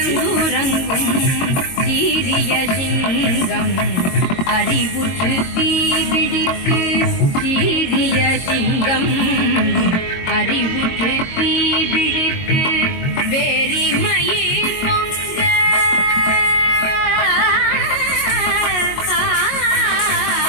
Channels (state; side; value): late; right; 22 ms